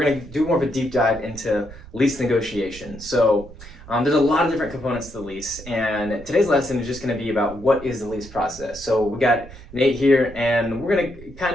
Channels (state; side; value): noise; right; rumble, 16 dB below the sound